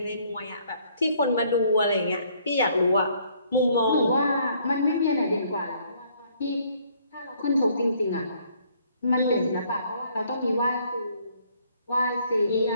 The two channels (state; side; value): inverted; both; correlation -0.64